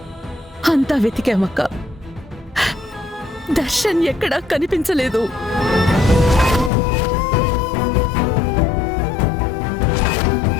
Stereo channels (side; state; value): right; drops out; at 6.7 s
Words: అంతా వెతికామక్క, దర్శన్ ఎక్కడా కనిపించలేదు.